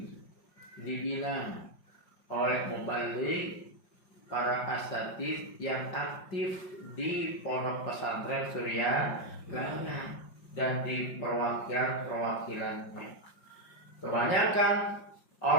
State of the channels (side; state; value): right; late; 5.5 ms